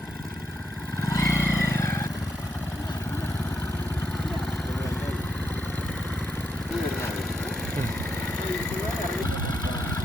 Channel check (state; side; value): normal; both; correlation 0.80